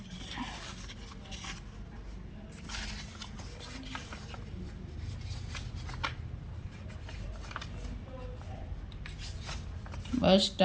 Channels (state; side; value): identical; both; correlation 1.00